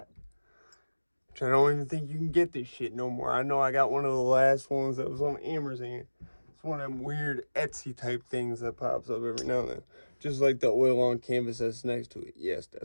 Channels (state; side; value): inverted; both; correlation -1.00